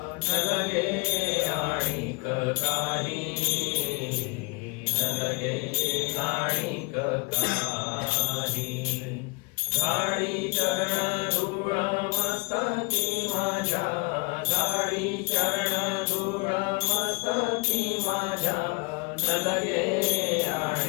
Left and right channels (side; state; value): right; quieter; 28.7 dB